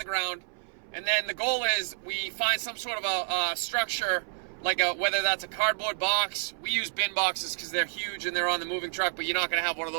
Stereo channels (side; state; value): left; silent; 58 dB below the other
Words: ground, and then the goal is we find some sort of a structure, like whether that's a cardboard box. We use bin boxes because they're huge and they're on the moving truck, but you're not going to have one of